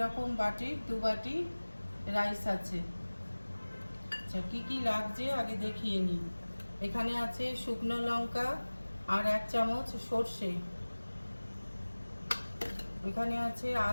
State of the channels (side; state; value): both; inverted; correlation -1.00